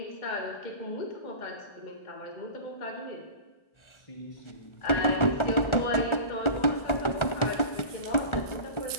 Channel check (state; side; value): late; right; 1.4 ms